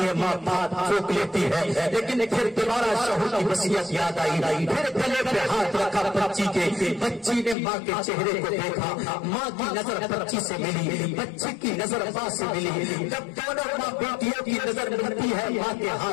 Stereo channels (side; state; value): right; drops out; at 7.6 s